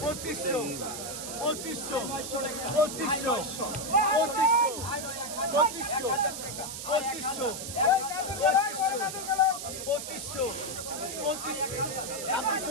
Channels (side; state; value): right; noise; hiss, 7 dB below the sound